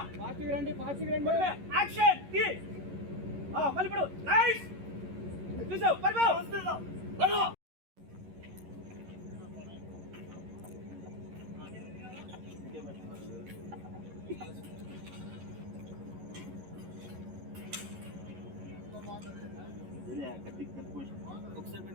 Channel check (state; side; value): late; left; 11 ms